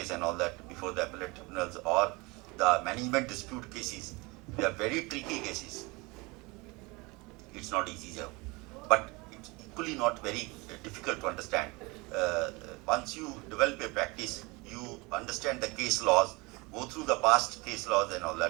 and all that before the appellate tribunals or the management dispute cases. They are very tricky cases. It's not easy, sir. But it's equally not very difficult to understand. Once you develop a practice, you understand the case laws, go through the past case laws and all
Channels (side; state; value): left; quieter; 25.4 dB